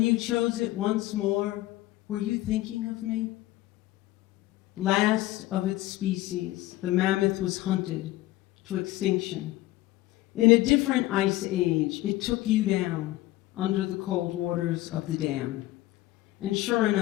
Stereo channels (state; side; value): quieter; right; 17.0 dB